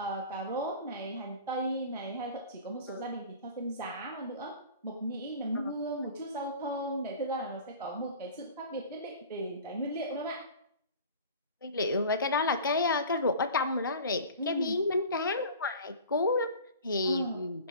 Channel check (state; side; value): inverted; both; correlation -0.40